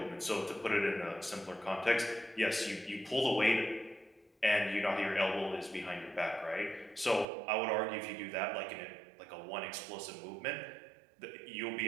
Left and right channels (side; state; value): left; drops out; at 7.2 s